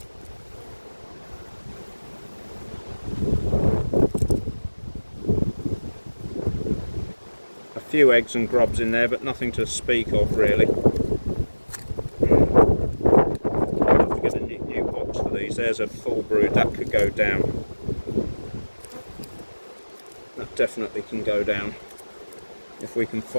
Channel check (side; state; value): both; inverted; correlation -1.00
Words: A few eggs and grubs in there, but nothing to speak of really. I'll have to get a new box for these. There's a full brood that could go down. That definitely can go down if we can